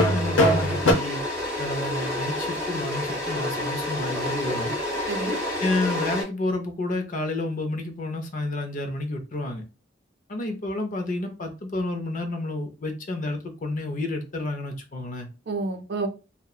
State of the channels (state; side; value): normal; both; correlation 0.49